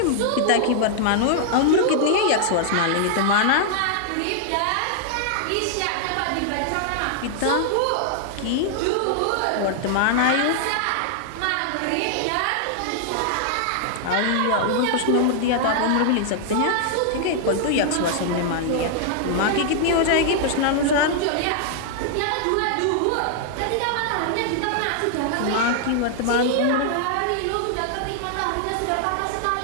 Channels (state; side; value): different; both; correlation -0.01